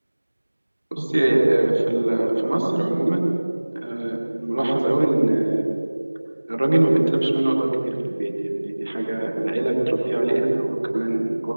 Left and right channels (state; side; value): inverted; both; correlation -1.00